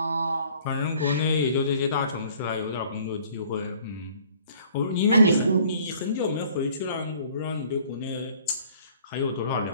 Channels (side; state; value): both; inverted; correlation -0.56